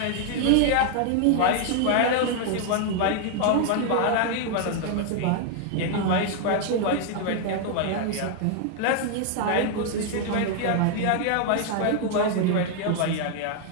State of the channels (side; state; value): both; different; correlation 0.00